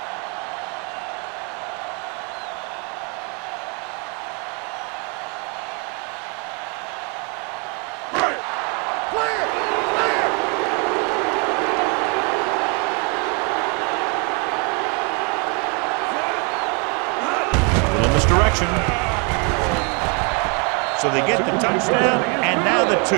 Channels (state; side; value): quieter; left; 34.5 dB